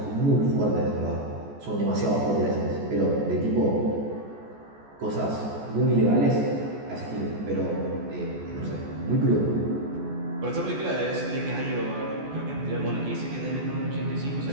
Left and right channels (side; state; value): left; late; 14 ms